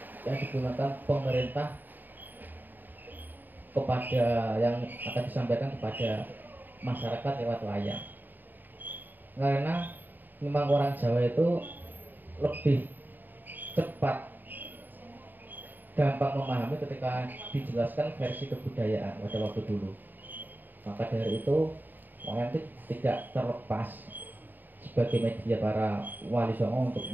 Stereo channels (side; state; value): left; late; 0.090 ms